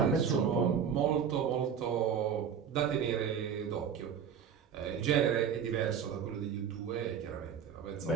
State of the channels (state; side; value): quieter; left; 7.7 dB